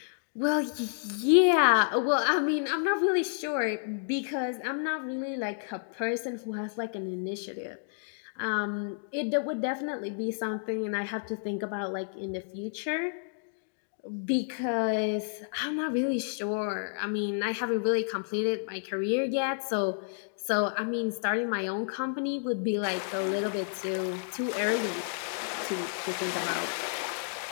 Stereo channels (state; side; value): silent; right; digital silence